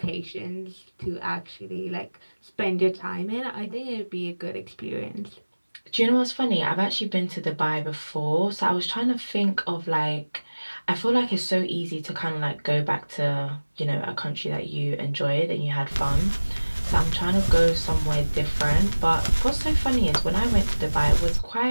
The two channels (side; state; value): both; inverted; correlation -1.00